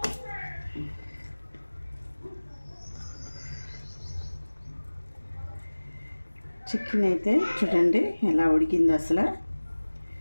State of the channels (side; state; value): both; inverted; correlation -1.00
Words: చికెన్ అయితే చూడండి ఎలా ఉడికింది, అసలు